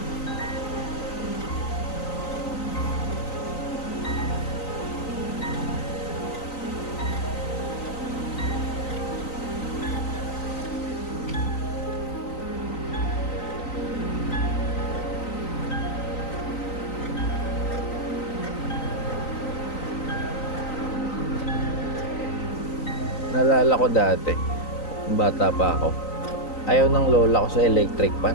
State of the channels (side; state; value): right; late; 3.9 ms